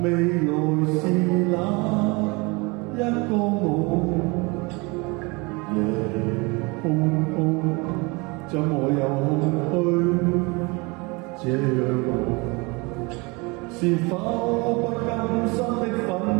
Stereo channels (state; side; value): quieter; left; 27.2 dB